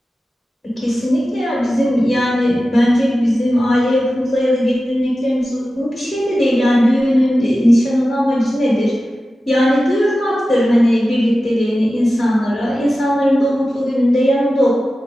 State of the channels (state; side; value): normal; both; correlation 0.94